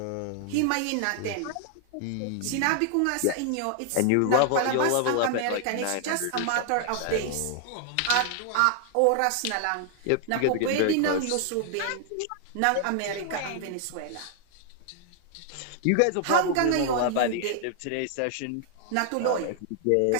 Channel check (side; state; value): both; different; correlation 0.00